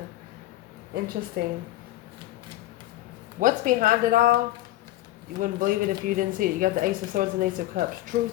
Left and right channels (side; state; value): right; quieter; 15.7 dB